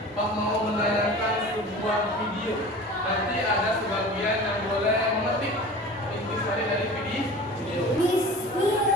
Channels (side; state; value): both; normal; correlation 0.38